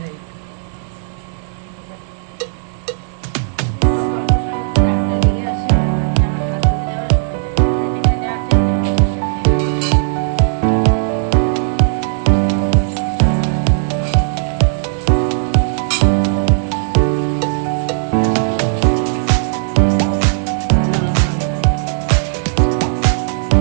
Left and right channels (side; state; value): left; silent; digital silence